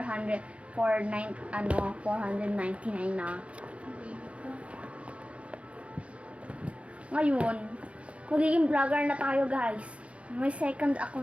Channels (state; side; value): late; left; 0.062 ms